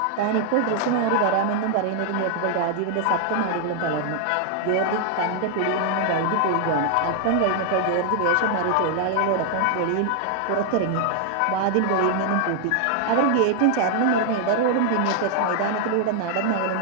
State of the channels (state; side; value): different; both; correlation 0.00